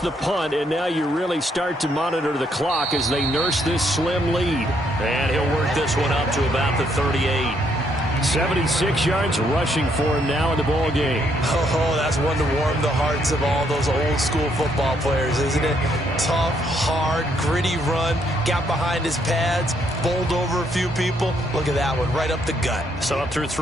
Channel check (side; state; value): both; normal; correlation 0.72